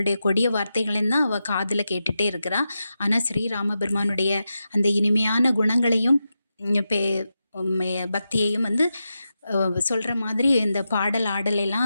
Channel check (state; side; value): inverted; both; correlation -0.89